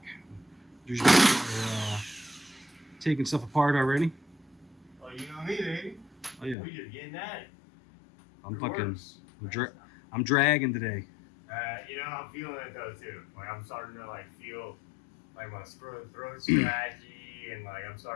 Usually we're taking stuff apart already. Oh, you know me, baby. Oh yeah. We just getting at it. I'm I'm dragging today. You know, I'm feeling it though too. Like I'm starting to like feel like my throat scratchy and like I'm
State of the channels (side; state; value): right; drops out; at 6.6 s